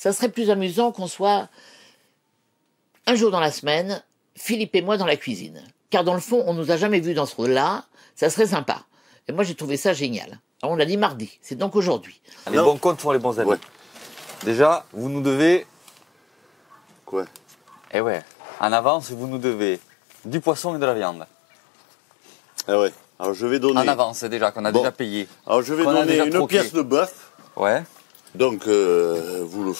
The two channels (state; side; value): drops out; right; at 17.9 s